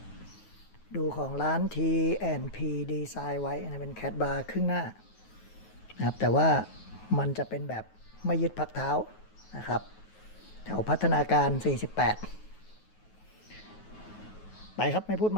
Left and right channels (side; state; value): right; late; 9.3 ms